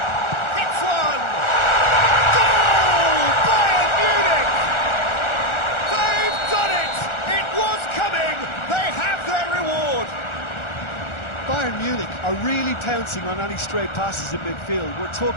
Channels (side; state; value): right; late; 1.4 ms